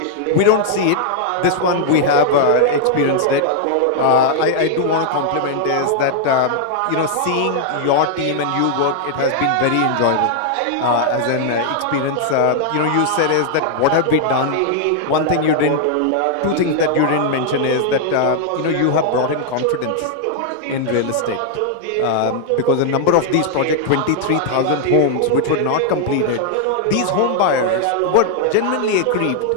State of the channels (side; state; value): both; different; correlation -0.01